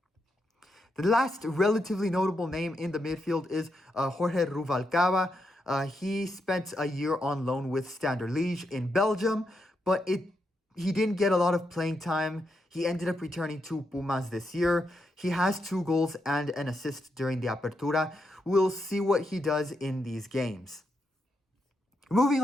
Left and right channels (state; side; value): normal; both; correlation 0.82